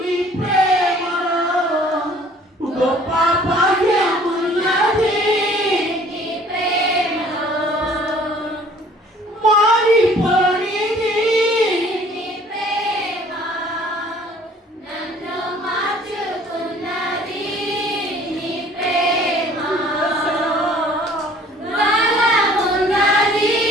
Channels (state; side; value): normal; both; correlation 0.54